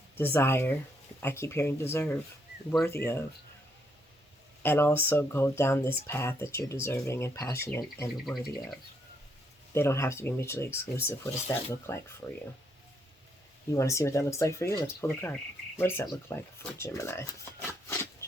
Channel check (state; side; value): normal; both; correlation 0.74